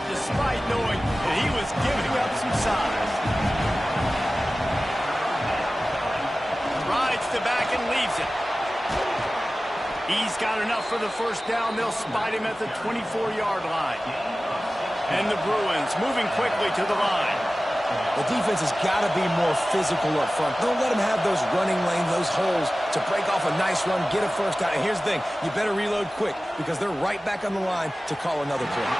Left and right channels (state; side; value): normal; both; correlation 0.96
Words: despite knowing that he was giving up some size. Rides the back and leaves it. He's got enough for the 1st down. They'll spot him at the 24-yard line. And the Bruins moving quickly to the line. The defense has got to be more physical up front. Don't let them have those running lanes, those holes to break off a nice run, get a 1st down. And here's the thing, you better reload quick because they're right back on the line to call another play.